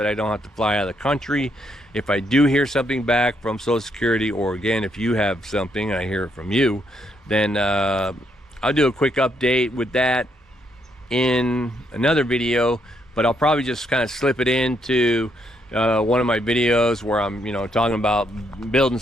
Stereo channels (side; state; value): both; normal; correlation 0.75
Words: I don't have to fly out of the country. If I do hear something back from Social Security, or again, if you have something and I hear it from you, then I'll do a quick update with that in another video. But I'll probably just kind of slip it into one of my videos where I'm, talking about building